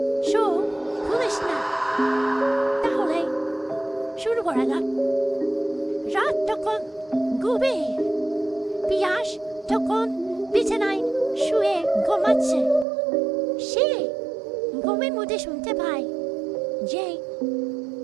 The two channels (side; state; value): left; drops out; at 12.9 s